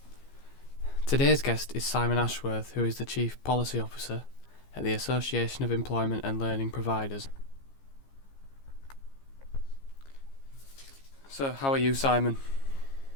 Today's guest is Simon Ashworth, who is the Chief Policy Officer at the Association of Employment and Learning Providers. So, how are you, Simon?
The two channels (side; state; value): right; late; 15 ms